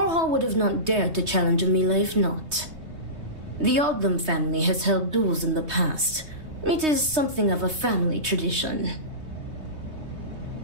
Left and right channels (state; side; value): late; left; 3.2 ms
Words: would have not dared to challenge Amila if not. The Odlum family has held duels in the past. It is something of a family tradition.